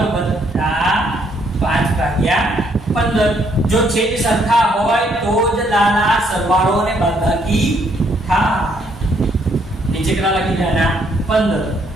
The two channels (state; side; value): normal; both; correlation 0.69